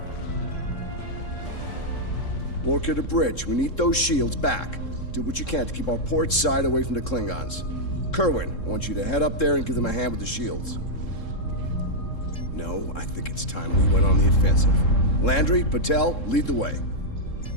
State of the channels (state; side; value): late; right; 3.7 ms